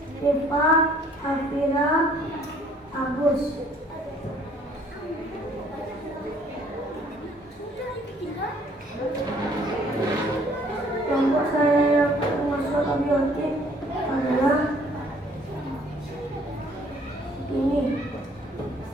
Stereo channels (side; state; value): both; normal; correlation 0.59